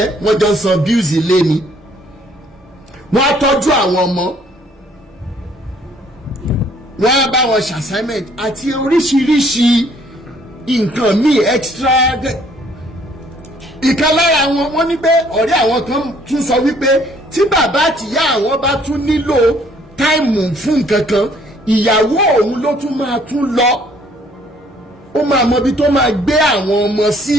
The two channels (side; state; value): both; normal; correlation 0.61